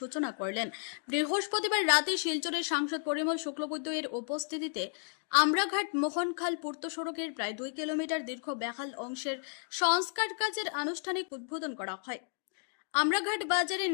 করলেন। বৃহস্পতিবার রাতে শিলচরের সাংসদ পরিমল শুক্লবৈদ্য এর উপস্থিতিতে আমরাঘাট মোহনখাল পূর্ত সড়কের প্রায় 2 কিলোমিটার দীর্ঘ বেহাল অংশের সংস্কার কাজের আনুষ্ঠানিক উদ্বোধন করা হয়। আমরাঘাট বাজারে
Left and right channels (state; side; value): silent; right; 56 dB below the other